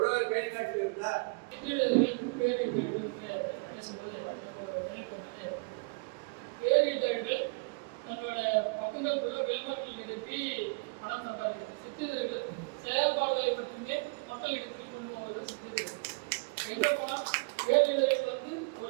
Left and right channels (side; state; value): left; quieter; 31.7 dB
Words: கைகாட்டில் இருந்தார். பேரிதழ்கள் தன்னோட பக்கங்களுக்குள்ள விளம்பரங்கள் நிறுத்தி பணம் சம்பாதிக்கிறது. சிற்றிதழ்கள் செயல்பாடுகளை மட்டுமே மக்களிடத்தில் கொண்டு போவது சிற்றிதழ்கள். எங்க போனா பேரிதழ்கள் வந்து